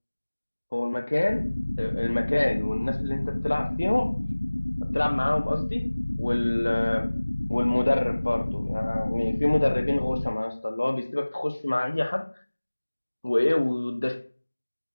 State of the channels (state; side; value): inverted; both; correlation -1.00